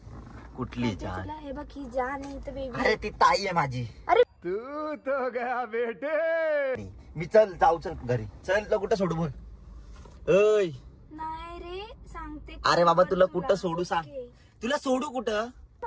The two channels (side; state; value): both; identical; correlation 1.00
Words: कुठली जान? तुला हे बघ, ही जान आहे तर बेबी. अरे ती ताई आहे माझी. अरे तू तो गया बेटे. मी चल जाऊ, चल घरी चल. तुला कुठं सोडू बोल? ओय नाही रे, सांगते. अरे बाबा तुला कुठं सोडू सांग? ओके. तुला सोडू कुठं?